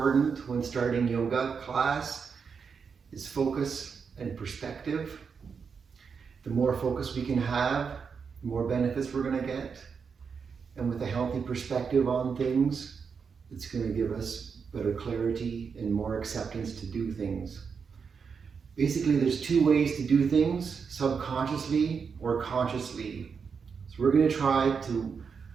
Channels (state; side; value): quieter; left; 5.9 dB